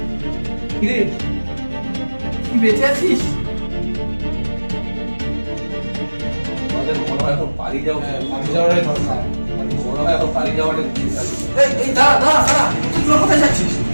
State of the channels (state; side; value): inverted; both; correlation -1.00